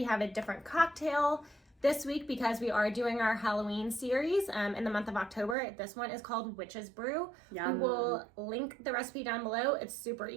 have a different cocktail. This week, because we are doing our Halloween series in the month of October, this one is called Witch's Brew. Yum. We will link the recipe down below. It's super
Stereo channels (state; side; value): drops out; left; at 5.6 s